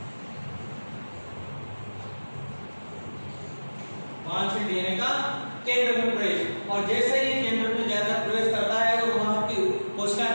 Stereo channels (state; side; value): inverted; both; correlation -1.00